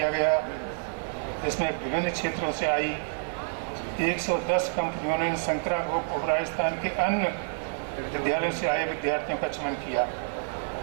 गया, जिसमें विभिन्न क्षेत्रों से आई 110 कंपनियों ने शंकरा ग्रुप ऑफ राजस्थान के अन्य विद्यालयों से आए विद्यार्थियों का चयन किया।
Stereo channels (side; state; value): left; silent; digital silence